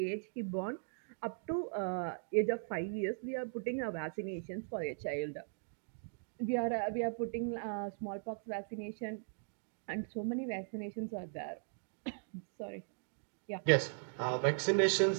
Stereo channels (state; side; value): silent; left; digital silence